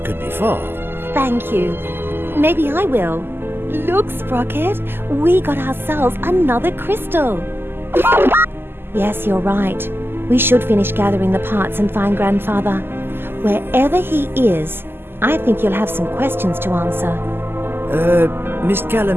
could be for. Thank you. Maybe I will. Look, Sprocket, we got ourselves another crystal. Yes, you're right. We should finish gathering the parts and find Grandfather. Wherever he is, I think you'll have some questions to answer. Miss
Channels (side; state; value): left; late; 0.11 ms